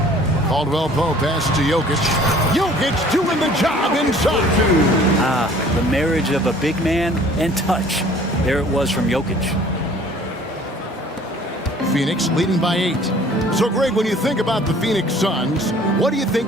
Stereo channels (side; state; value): both; normal; correlation 0.52